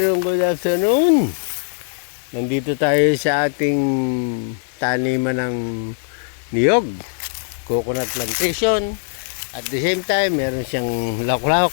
good afternoon. Nandito tayo sa ating taniman ng niyog, coconut plantation. At the same time, meron siyang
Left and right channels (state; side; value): silent; right; digital silence